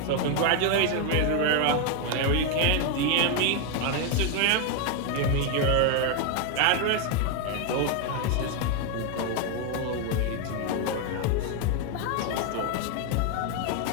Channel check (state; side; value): different; both; correlation 0.01